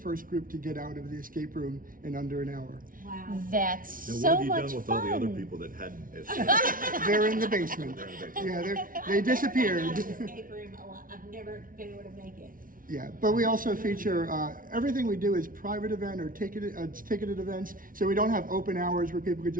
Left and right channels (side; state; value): left; late; 0.40 ms